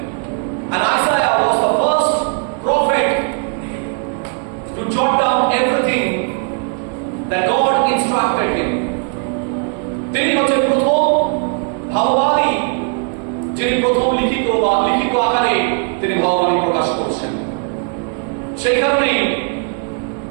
And Isaiah was the first prophet to jot down everything that God instructed him. তিনি হচ্ছেন প্রথম ভাববাদী, যিনি প্রথম লিখিত আকারে তিনি ভাববাদী প্রকাশ করছেন। সেই কারণে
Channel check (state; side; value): quieter; left; 39.9 dB